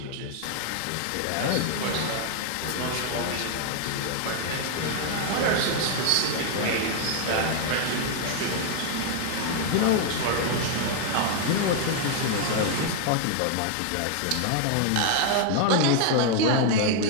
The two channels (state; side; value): different; both; correlation 0.00